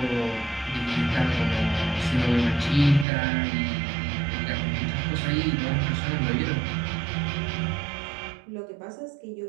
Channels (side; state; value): left; drops out; at 3.1 s